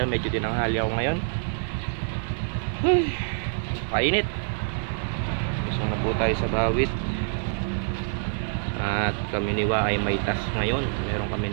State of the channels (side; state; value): left; silent; 57 dB below the other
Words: Medyo tinanghali ako ngayon. Painit. Lusong na po tayo sa bawit. At kami niwa ay may tas ngayon. Meron kami